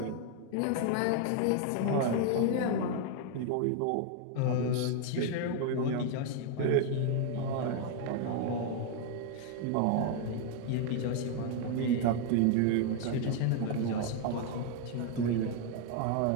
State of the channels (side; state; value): both; different; correlation 0.00